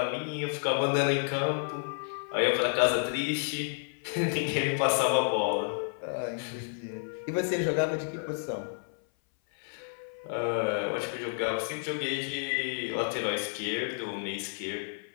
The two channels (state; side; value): silent; right; 57 dB below the other